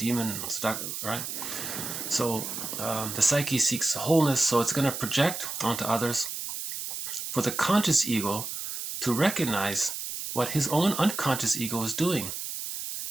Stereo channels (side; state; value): right; noise; hiss, 6 dB below the sound